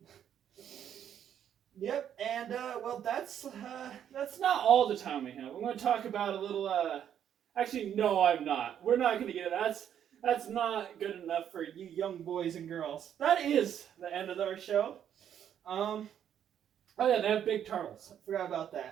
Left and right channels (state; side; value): quieter; left; 9.5 dB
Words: Yep, and well, that's not all the time we have. I'm going to talk about a little. Actually, no, I'm not. We're not going to get it. That's not good enough for you young boys and girls. That is the end of our show. Oh yeah, they have big turtles. I forgot about